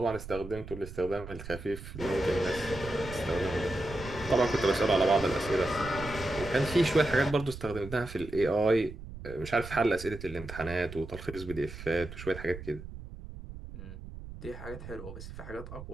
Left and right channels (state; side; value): noise; right; rumble, 12 dB below the sound